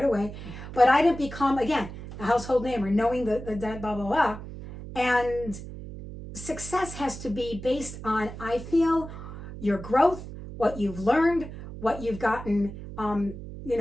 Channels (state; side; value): noise; right; hum, 11 dB below the sound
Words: away. But I didn't become, again, a household name or knowing the blah, blah, blah. And success has to be based on, I feel, your growth, what you've learned, what you've gotten,